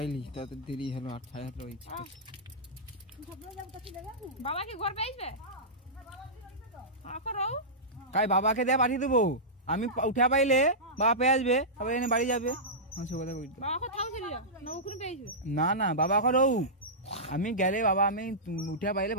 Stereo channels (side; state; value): both; normal; correlation -0.15